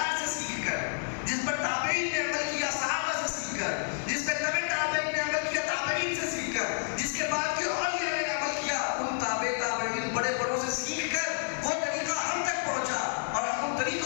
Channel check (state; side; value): silent; right; 58 dB below the other